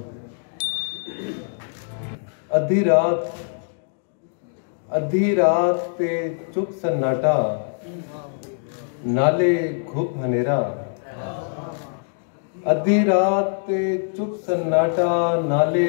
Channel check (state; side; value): silent; right; digital silence